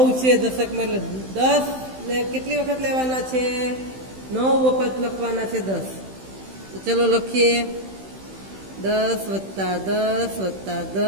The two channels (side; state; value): left; late; 15 ms